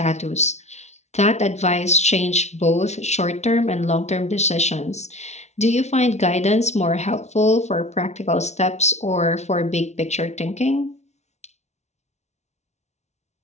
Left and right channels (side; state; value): right; late; 0.32 ms